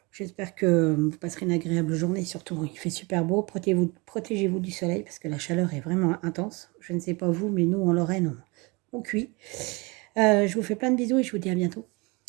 J'espère que vous passerez une agréable journée. Surtout, il fait super beau. Protégez-vous du soleil parce que la chaleur est vraiment intense. Je ne sais pas vous, mais nous, en Lorraine, on cuit. Je vous fais plein de bisous et je vous dis à bientôt.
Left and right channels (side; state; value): left; quieter; 27.1 dB